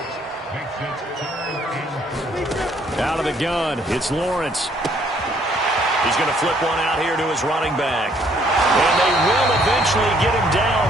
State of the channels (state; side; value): normal; both; correlation 0.65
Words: Out of the gun, it's Lawrence. He's going to flip one out here to his running back. And they will eventually get him